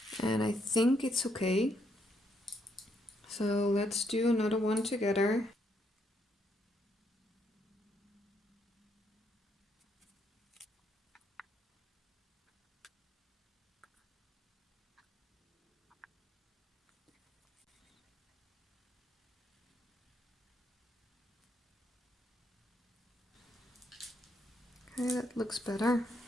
and I think it's okay. So let's do another one together. Okay, that looks better.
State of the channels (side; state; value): both; normal; correlation 0.75